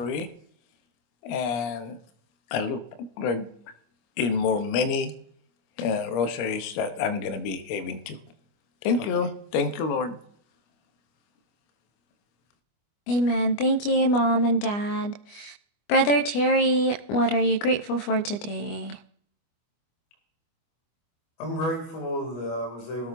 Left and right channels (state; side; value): late; right; 25 ms